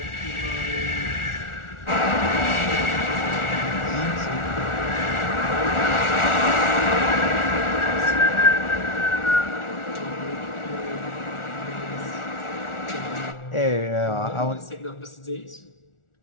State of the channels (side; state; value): right; late; 1.4 ms